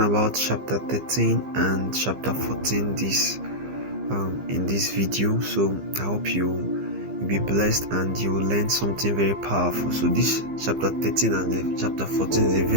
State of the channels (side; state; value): left; late; 15 ms